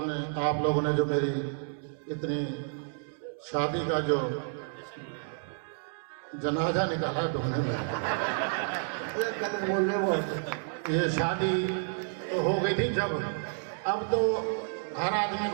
लोगों ने जो मेरी इतनी शादी का जो जनाजा निकाला ढूंढने में, बोल रहे वो ये शादी तो हो गई थी जब, अब तो हर आदमी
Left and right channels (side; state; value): left; silent; digital silence